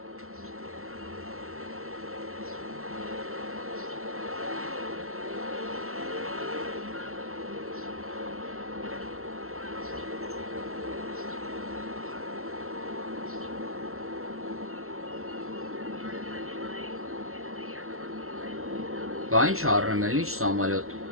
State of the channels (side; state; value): left; late; 0.62 ms